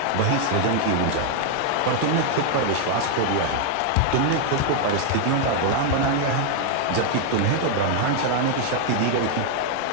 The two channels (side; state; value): both; different; correlation 0.00